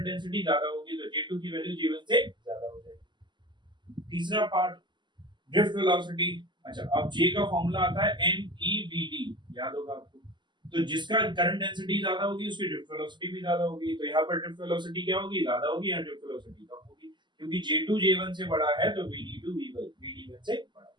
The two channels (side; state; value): left; late; 0.22 ms